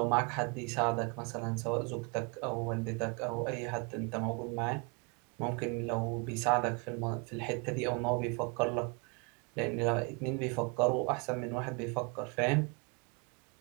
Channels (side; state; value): left; quieter; 32.2 dB